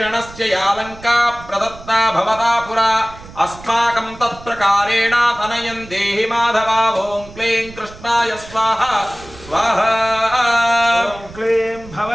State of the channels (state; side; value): noise; right; rumble, 18 dB below the sound